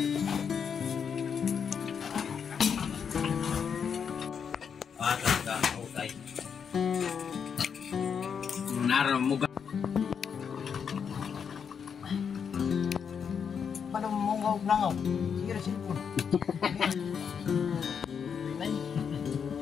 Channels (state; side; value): quieter; right; 6.9 dB